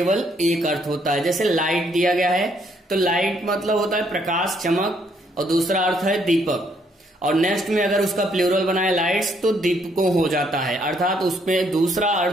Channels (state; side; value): normal; both; correlation 0.70